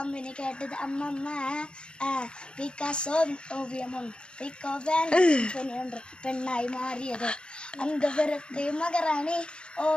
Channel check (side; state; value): right; late; 0.053 ms